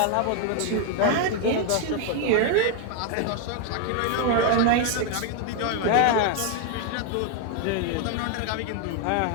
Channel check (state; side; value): different; both; correlation 0.01